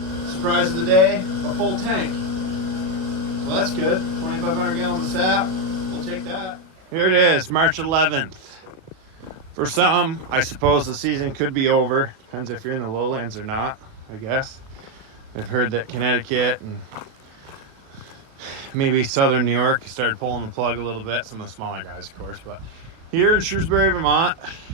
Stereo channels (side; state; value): left; late; 37 ms